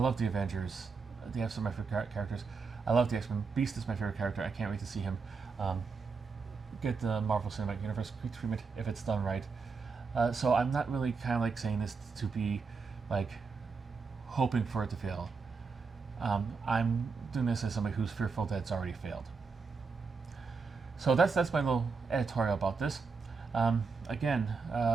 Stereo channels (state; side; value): quieter; left; 4.9 dB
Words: the Avengers. They have some of my favorite characters. I love the X-Men. Beast is my favorite character. I can't wait to see him get the Marvel Cinematic Universe treatment if it's done right. So I'm not really kind of like saying this to be like hoping for it to fail. I'm doing this as somebody who's fearful that it's already failed. So that's my little editorial about this. Again,